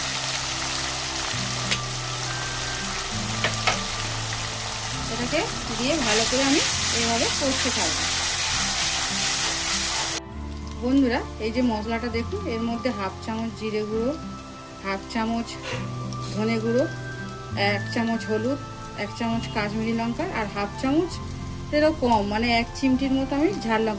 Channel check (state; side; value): identical; both; correlation 1.00